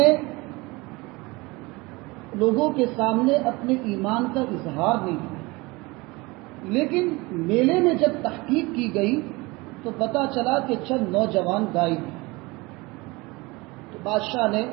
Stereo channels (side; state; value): left; quieter; 23.6 dB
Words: لوگوں کے سامنے اپنے ایمان کا اظہار نہیں کیا، لیکن میلے میں جب تحقیق کی گئی تو پتہ چلا کہ چند نوجوان غائب ہیں۔ تو بادشاہ نے